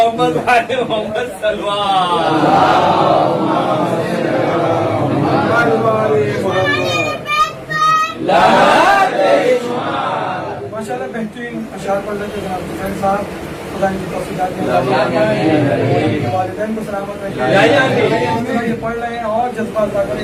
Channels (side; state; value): both; identical; correlation 1.00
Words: محمد سلمان ماشاء اللہ بہترین اشعار پڑھ رہے تھے جناب حسین صاحب، خدا ان کی توفیقات دے، والدین کو سلامت رکھے، یہ پڑھ رہے ہیں اور جذبات زیادہ کریں،